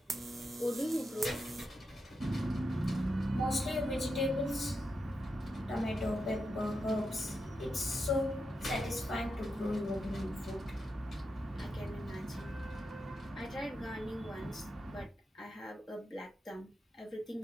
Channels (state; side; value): normal; both; correlation 0.86